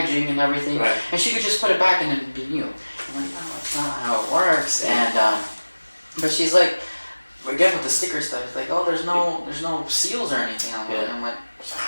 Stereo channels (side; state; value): both; inverted; correlation -1.00